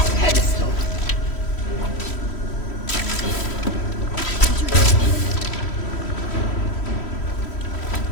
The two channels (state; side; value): late; right; 3.1 ms